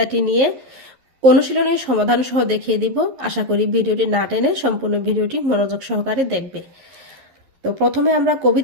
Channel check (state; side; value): late; left; 11 ms